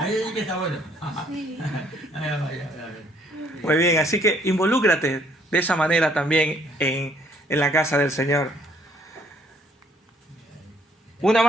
sí que está bueno. Muy bien, así que involúcrate de esa manera también en la casa del Señor. Una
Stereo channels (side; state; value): both; normal; correlation 0.64